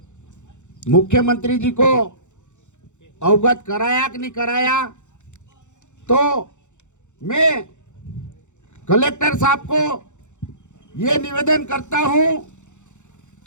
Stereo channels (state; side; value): late; right; 0.84 ms